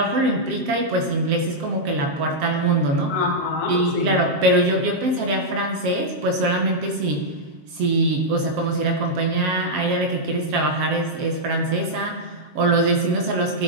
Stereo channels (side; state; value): left; late; 7.5 ms